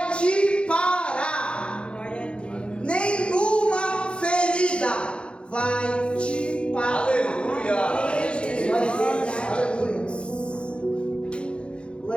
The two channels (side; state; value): right; late; 0.057 ms